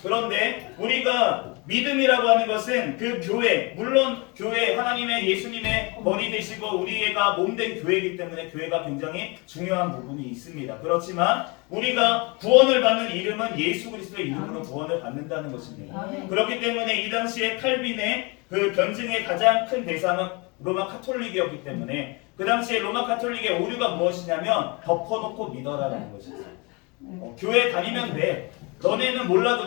그런데 우리가 믿음이라고 하는 것은 그 교회, 물론 교회 하나님의 예수님의 머리 되시고 우리가 몸된 교회이기 때문에 교회가 굉장히 중요한 부분이 있습니다. 그렇지만 우리가 구원을 받는 이름은 예수 그리스도의 이름으로 구원을 받는다는 것입니다. 그렇기 때문에 이 당시에 칼빈의 그 변증의 가장 큰 대상은 로마 카톨릭이었기 때문에 그 당시에 로마 카톨릭의 오류가 무엇이냐면 덮어놓고 믿어라라는 것이었어요. 교회 다니면 돼. 너네는 몰라도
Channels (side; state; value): right; quieter; 28.8 dB